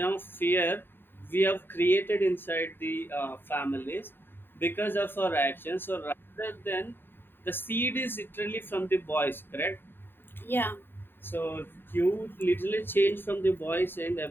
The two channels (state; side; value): late; right; 0.099 ms